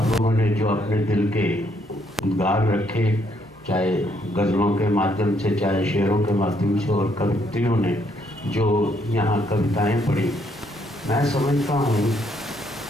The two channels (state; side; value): normal; both; correlation 0.71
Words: लोगों ने जो अपने दिल के उद्गार रखे, चाहे गज़लों के माध्यम से, चाहे शेरों के माध्यम से, और कवित्रियों ने जो यहाँ कविताएं पढ़ी, मैं समझता हूँ